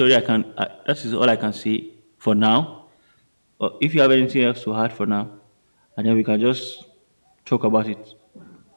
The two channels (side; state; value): both; inverted; correlation -1.00